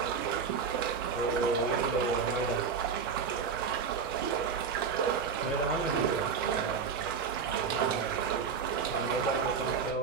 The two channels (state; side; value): quieter; left; 6.0 dB